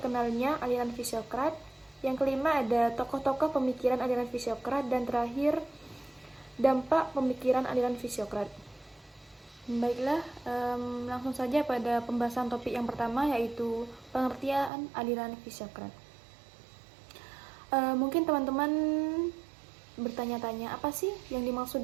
aliran Fisiokrat. Yang kelima ada tokoh-tokoh pemikiran aliran Fisiokrat. Dan terakhir, dampak pemikiran aliran Fisiokrat. Baiklah, langsung saja pada pembahasan topik yang pertama, yaitu pengertian aliran Fisiokrat. Mungkin teman-teman bertanya-tanya, apa sih yang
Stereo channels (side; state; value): left; drops out; at 14.7 s